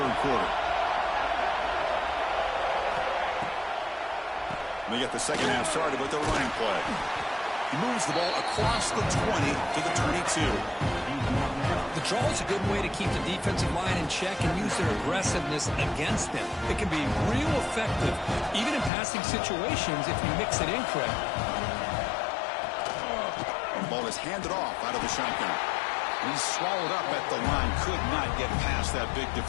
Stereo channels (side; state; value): right; drops out; at 18.9 s